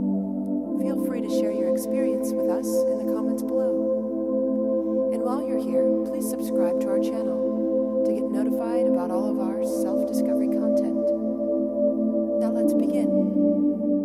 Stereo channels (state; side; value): identical; both; correlation 1.00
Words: Feel free to share your experience with us in the comments below. And while you're here, please subscribe to our channel to get notified about all of our self-discovery content. Now let's begin.